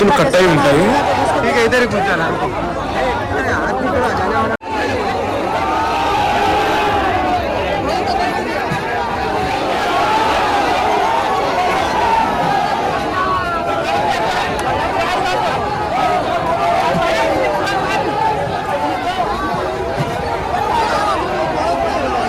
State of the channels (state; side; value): identical; both; correlation 1.00